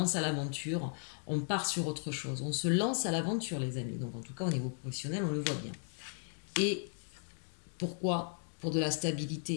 à l'aventure, on part sur autre chose. On se lance à l'aventure, les amis. Donc en tout cas, au niveau professionnel, on le voit bien. Et pourquoi? Pour de la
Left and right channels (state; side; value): silent; right; 54 dB below the other